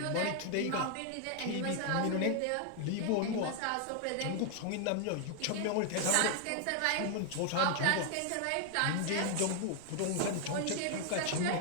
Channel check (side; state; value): both; different; correlation 0.00